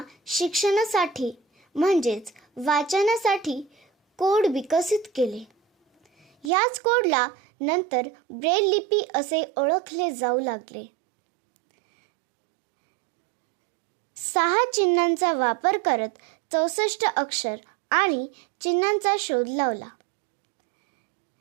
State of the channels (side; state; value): left; drops out; at 6.5 s